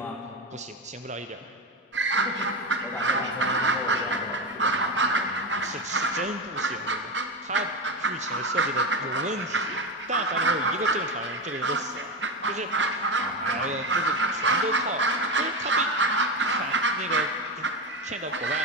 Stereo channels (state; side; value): normal; both; correlation 0.16